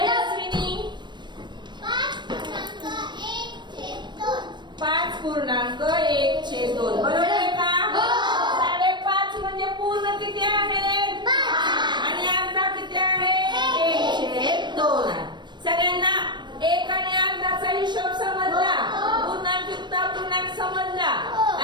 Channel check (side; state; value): left; late; 0.22 ms